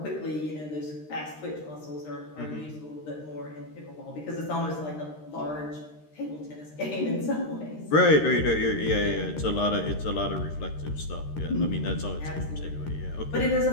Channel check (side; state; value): right; late; 13 ms